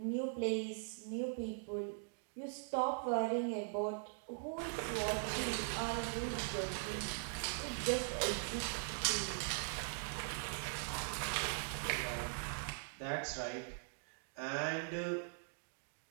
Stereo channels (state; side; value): silent; left; digital silence